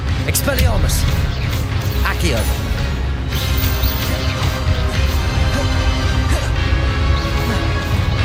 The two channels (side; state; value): both; identical; correlation 1.00